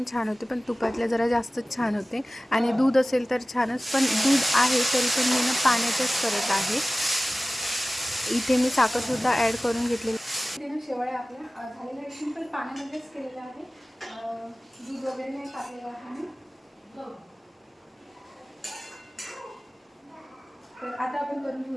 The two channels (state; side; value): normal; both; correlation 0.97